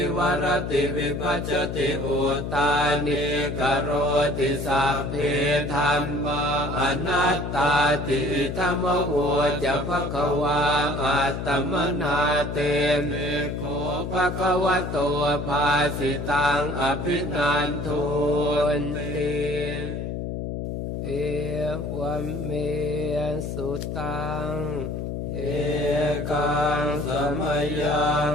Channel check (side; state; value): left; noise; hum, 4 dB below the sound